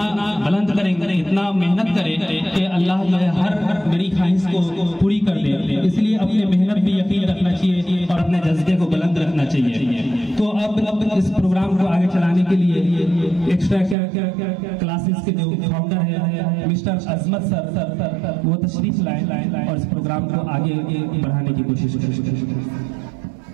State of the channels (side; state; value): left; drops out; at 14.0 s